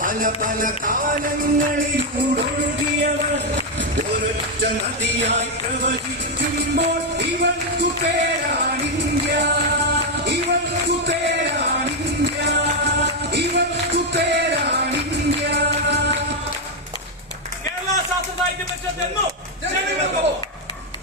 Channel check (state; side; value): normal; both; correlation 0.03